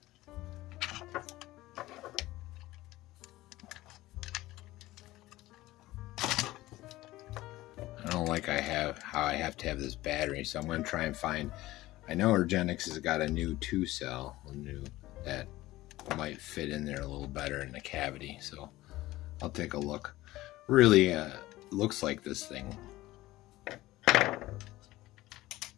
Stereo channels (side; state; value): right; quieter; 17.4 dB